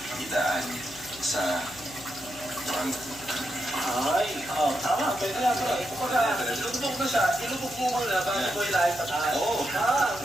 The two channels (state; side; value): noise; left; hum, 19 dB below the sound